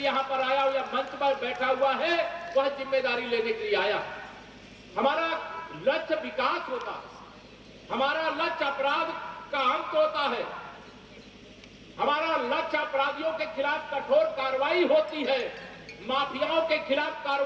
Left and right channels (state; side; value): identical; both; correlation 1.00